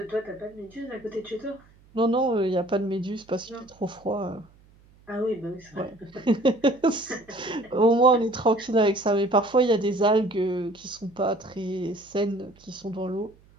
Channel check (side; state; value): right; noise; hum, 28 dB below the sound